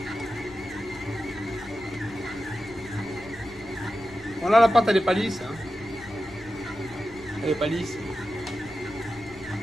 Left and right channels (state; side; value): noise; left; rumble, 20 dB below the sound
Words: Bon, là, la pâte, elle est pas lisse. Hein. Elle est pas lisse.